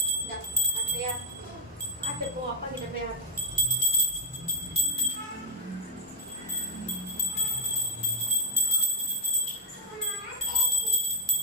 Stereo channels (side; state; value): both; normal; correlation 0.03